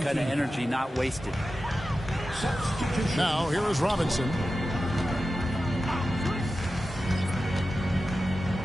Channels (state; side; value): normal; both; correlation 0.93